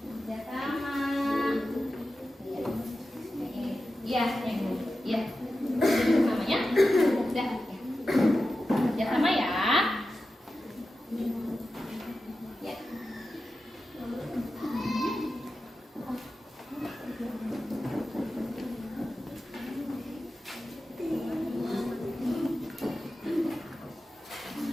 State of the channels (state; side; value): normal; both; correlation 0.92